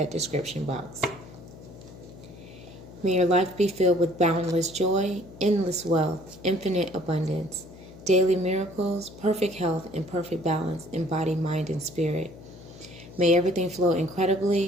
description box. May your life be filled with boundless joy, endless wealth, infinite abundance, daily miracles, perfect health, and perfect balance in body, mind, and spirit. May everything flow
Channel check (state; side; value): noise; left; hum, 18 dB below the sound